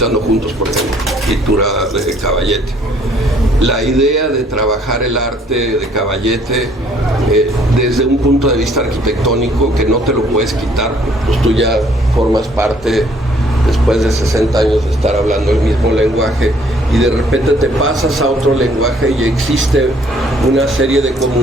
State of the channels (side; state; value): both; normal; correlation 0.62